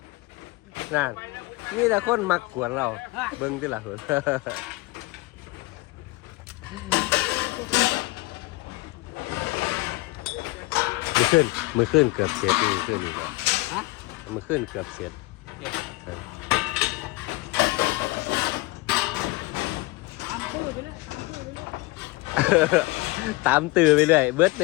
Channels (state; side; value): quieter; right; 21.7 dB